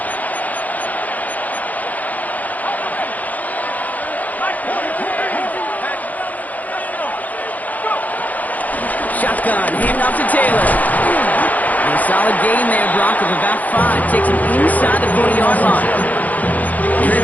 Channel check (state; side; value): late; right; 0.079 ms